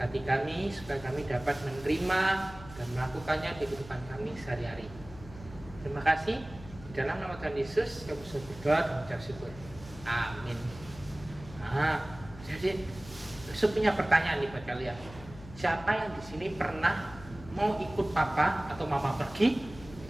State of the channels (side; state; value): left; noise; hum, 16 dB below the sound